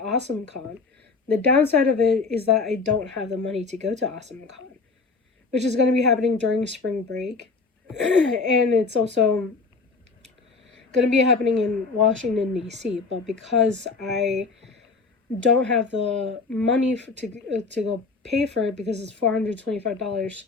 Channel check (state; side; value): quieter; right; 4.3 dB